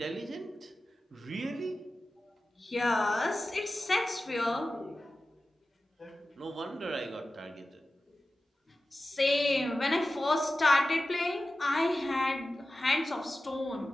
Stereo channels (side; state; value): both; normal; correlation 0.94